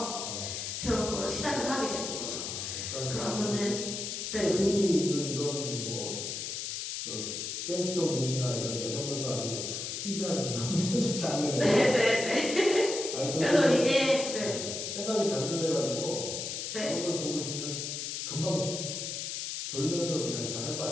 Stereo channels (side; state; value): left; noise; hiss, 4 dB below the sound